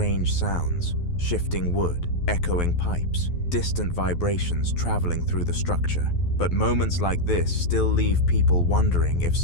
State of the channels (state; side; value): late; right; 12 ms